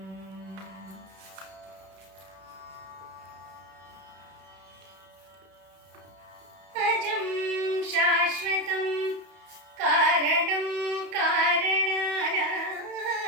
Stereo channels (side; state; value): left; late; 31 ms